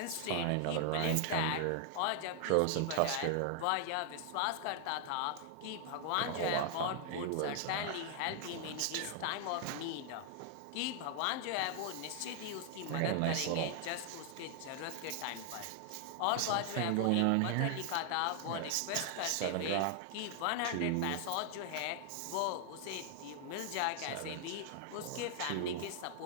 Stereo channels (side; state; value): both; different; correlation 0.00